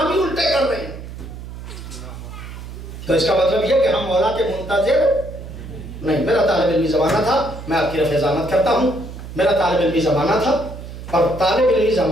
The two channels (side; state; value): right; noise; hum, 12 dB below the sound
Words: ہی الٹے کر رہے ہیں، تو اس کا مطلب یہ کہ ہم مولا کے منتظر نہیں. میرا طالب علمی زمانہ تھا، میں آپ کی رفع ضامت کرتا ہوں، میرا طالب علمی زمانہ تھا، اور طالب علمی